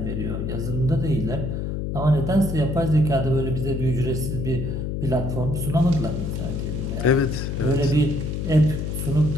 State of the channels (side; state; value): left; noise; hum, 3 dB below the sound